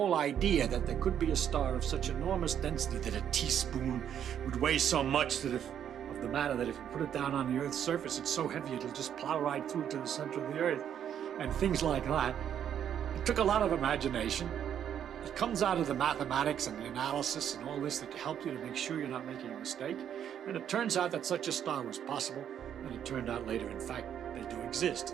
idea that there could be a star of such enormous density that a teaspoon would weigh so much that if of the matter that if you put it down on the Earth's surface, it's so heavy it'll just plow right through to the center of the Earth, and things like that. It took a lot of imagination. It comes out of the mathematics and the analysis and all this that help you to make sure you're not making a mistake. And it turns out that such a star was possible. And it turned out later, in fact, they do exist.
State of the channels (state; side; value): quieter; left; 9.3 dB